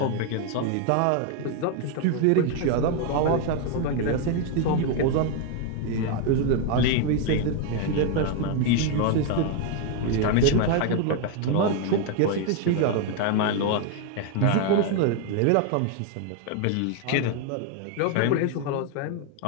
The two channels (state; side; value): different; both; correlation 0.01